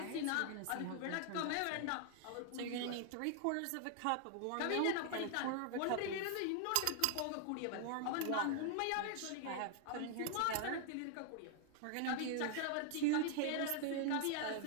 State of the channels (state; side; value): different; both; correlation 0.00